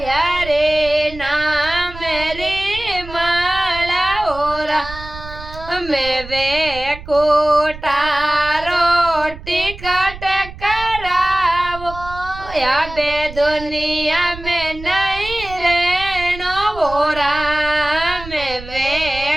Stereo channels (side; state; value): right; noise; rumble, 13 dB below the sound